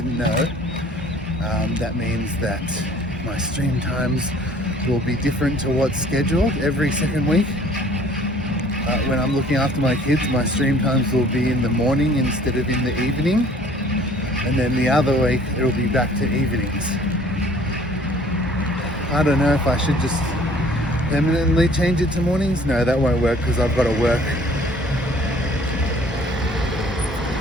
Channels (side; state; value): both; normal; correlation 0.54